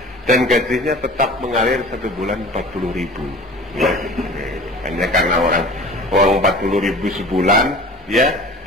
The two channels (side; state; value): both; normal; correlation 0.41